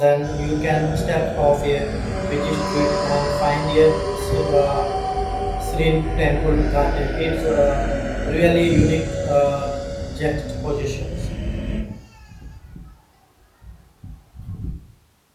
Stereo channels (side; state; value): both; identical; correlation 1.00